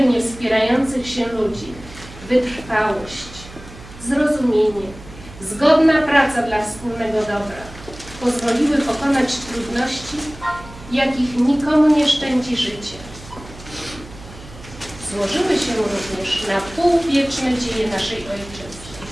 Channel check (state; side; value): noise; right; hum, 17 dB below the sound